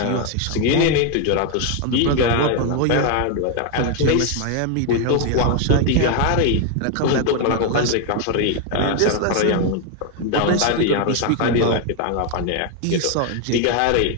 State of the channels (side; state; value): both; different; correlation 0.01